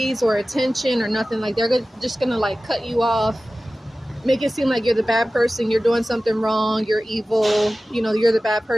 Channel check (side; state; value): both; normal; correlation 0.96